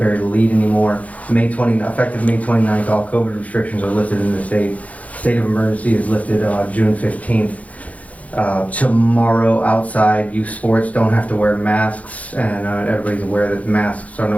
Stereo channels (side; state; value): right; late; 0.069 ms